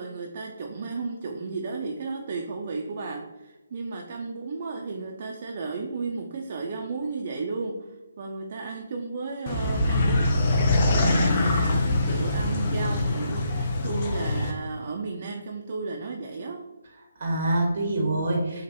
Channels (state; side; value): inverted; both; correlation -0.74